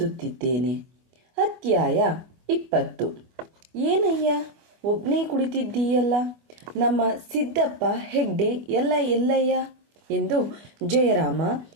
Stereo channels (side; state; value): left; late; 24 ms